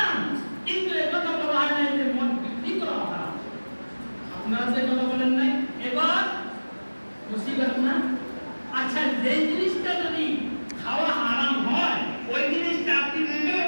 কিন্তু এই কথা বলা হয় না যে মদ বিক্রি করা হারাম। আপনারা যে কথা বলেন নাই, এবার মুসিবত না? আচ্ছা, যে জিনিসটা যদি খাওয়া হারাম হয়, ওই জিনিসটা আপনি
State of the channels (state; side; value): inverted; both; correlation -1.00